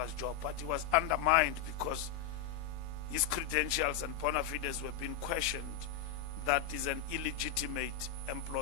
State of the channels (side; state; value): right; quieter; 8.3 dB